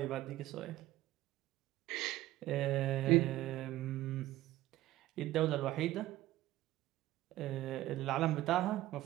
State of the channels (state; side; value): quieter; left; 15.8 dB